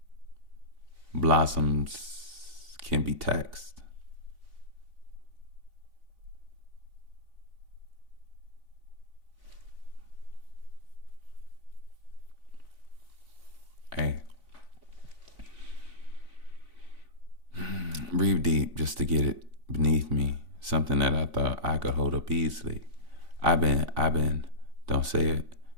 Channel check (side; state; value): left; late; 3.5 ms